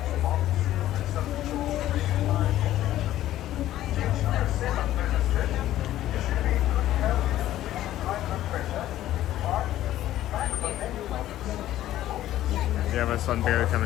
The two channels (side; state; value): right; quieter; 13.5 dB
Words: We have a sun barely